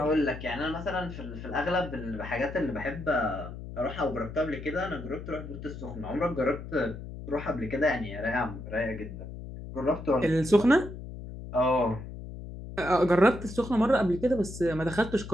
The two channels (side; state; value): left; noise; hum, 11 dB below the sound